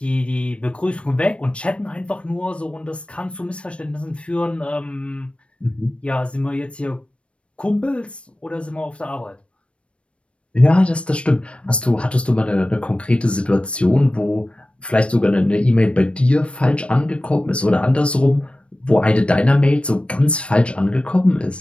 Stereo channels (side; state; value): right; late; 0.060 ms